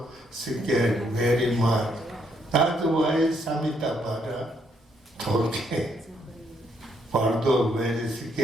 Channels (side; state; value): both; normal; correlation 0.73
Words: scared very much. That's why Samitabhadra told him. Pardo very